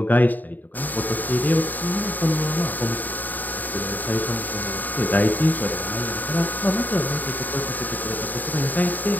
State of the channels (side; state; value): right; late; 0.086 ms